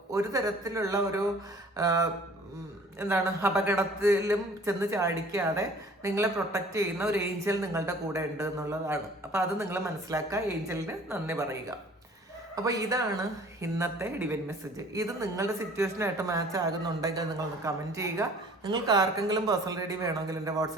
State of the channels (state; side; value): normal; both; correlation 0.50